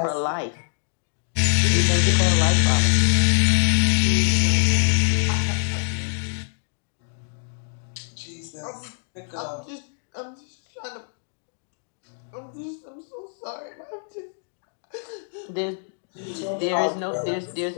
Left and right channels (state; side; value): silent; right; digital silence